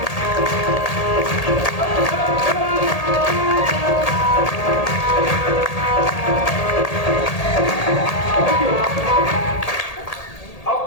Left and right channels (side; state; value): right; late; 1.8 ms